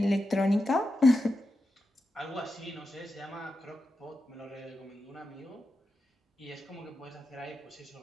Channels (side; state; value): both; normal; correlation 0.89